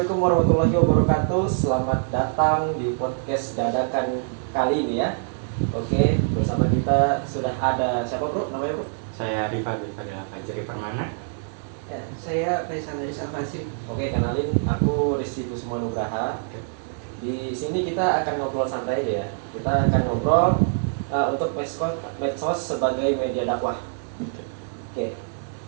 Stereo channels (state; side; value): silent; left; digital silence